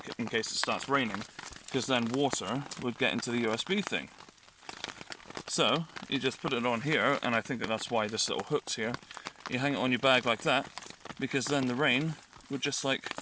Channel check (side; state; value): both; identical; correlation 1.00